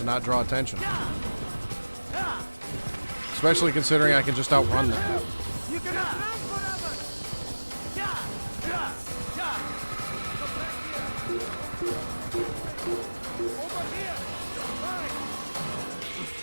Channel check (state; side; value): inverted; both; correlation -1.00